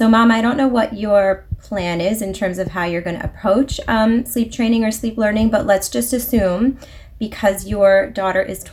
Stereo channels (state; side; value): identical; both; correlation 1.00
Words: Mom, I don't know what your plan is in terms of how you're going to approach sleep training or sleep learning, but let's just assume because your daughter is